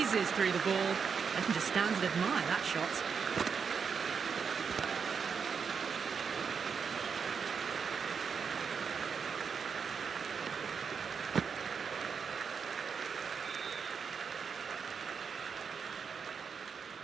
through the ball. I can just stand and admire that shot.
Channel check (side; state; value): left; quieter; 6.2 dB